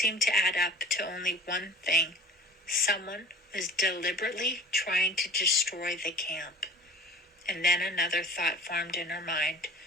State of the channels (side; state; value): both; normal; correlation 0.42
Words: to add up to only one thing. Someone was deliberately trying to destroy the camp. And then another thought formed in her mind.